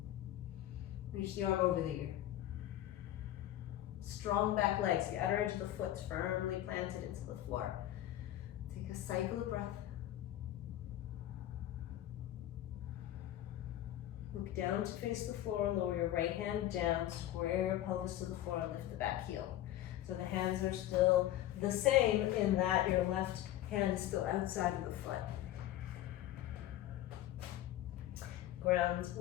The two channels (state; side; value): quieter; right; 13.4 dB